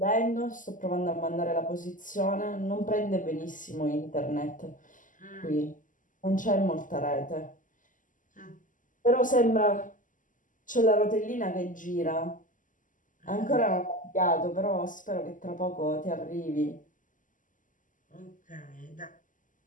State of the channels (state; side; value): late; right; 0.38 ms